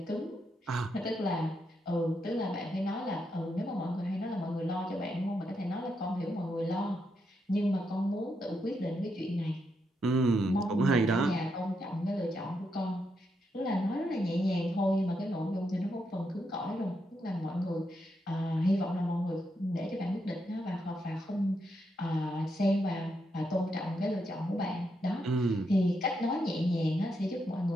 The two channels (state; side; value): normal; both; correlation 0.81